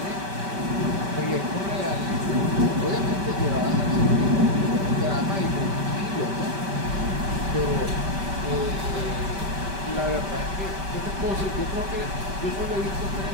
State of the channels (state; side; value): late; left; 5.2 ms